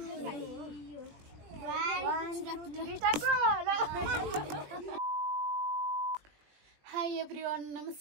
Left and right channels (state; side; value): late; left; 20 ms